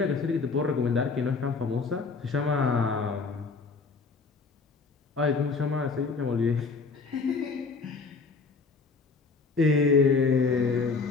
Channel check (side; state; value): right; quieter; 4.5 dB